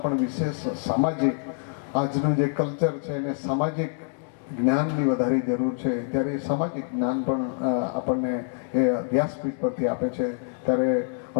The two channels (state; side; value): silent; right; 61 dB below the other